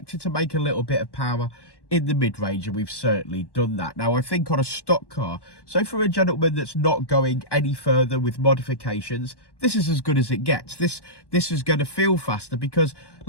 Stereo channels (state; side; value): late; right; 1.1 ms